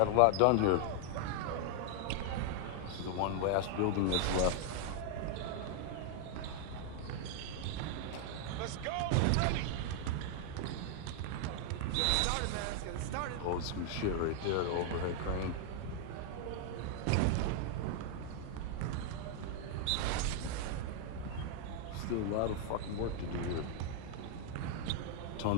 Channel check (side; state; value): both; different; correlation 0.00